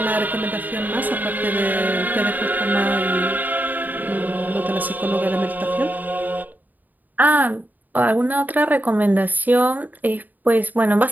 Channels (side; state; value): left; late; 0.085 ms